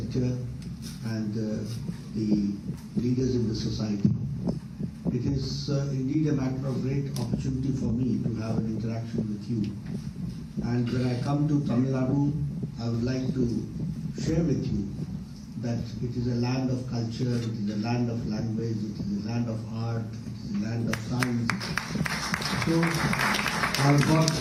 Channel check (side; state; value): both; identical; correlation 1.00